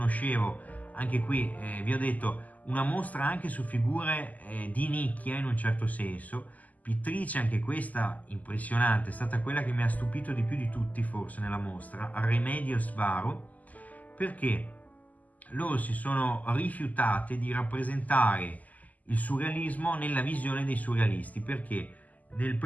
anche qui vi ho detto, una mostra anche su figure di nicchia in un certo senso, pittrice anche questa impressionante, è stata quella che mi ha stupito di più di tutti forse nella mostra, Remedios Varo, perché loro si sono rifiutate di rappresentare il surrealismo nella visione dei surrealisti, perché nel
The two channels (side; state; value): right; late; 0.078 ms